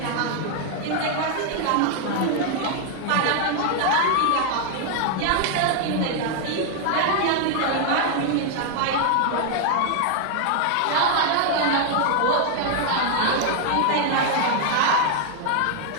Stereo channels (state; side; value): different; both; correlation 0.00